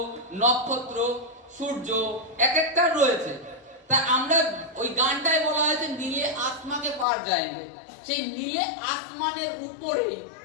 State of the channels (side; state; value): right; drops out; at 7.1 s